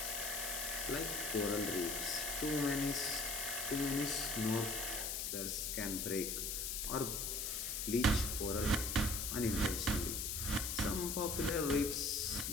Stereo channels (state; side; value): noise; left; hiss, 1 dB below the sound